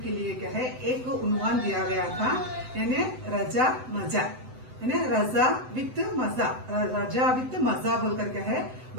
के लिए क्या है एक उन्वान दिया गया था, यानी रजा मजा, यानी रजा विद मजा, रजा विद मजा बोलकर क्या है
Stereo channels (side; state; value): left; late; 7.9 ms